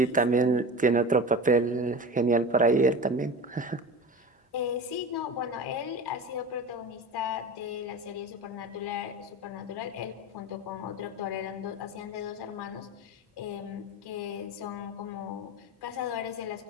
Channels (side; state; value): both; normal; correlation 0.30